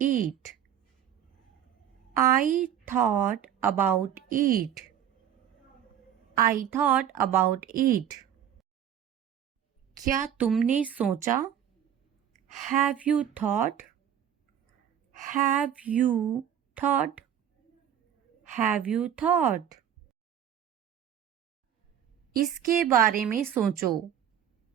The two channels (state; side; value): quieter; left; 9.7 dB